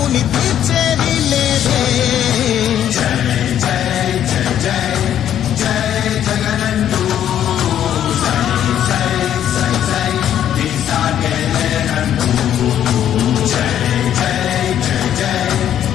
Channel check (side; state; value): right; quieter; 10.4 dB